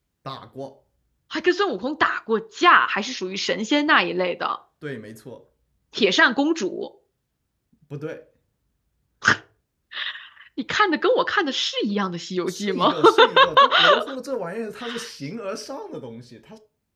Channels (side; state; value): both; identical; correlation 1.00